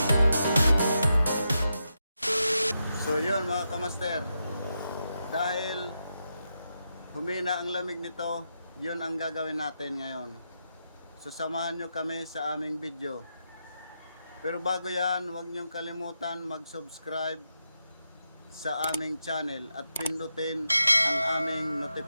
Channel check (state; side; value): inverted; both; correlation -0.86